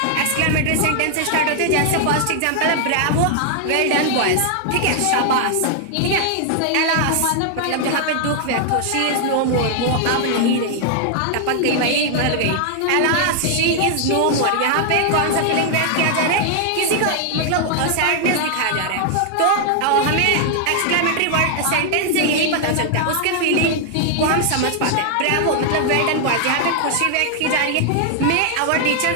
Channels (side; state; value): both; different; correlation 0.00